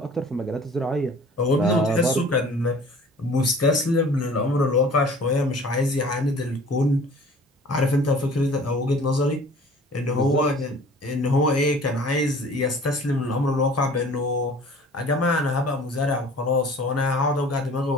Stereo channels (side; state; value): both; normal; correlation 0.48